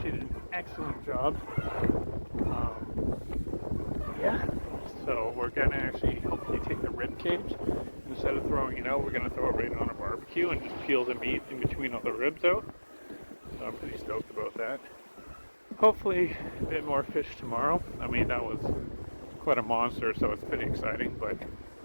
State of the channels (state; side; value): inverted; both; correlation -1.00